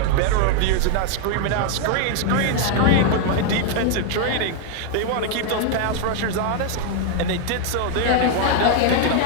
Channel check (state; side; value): different; both; correlation 0.00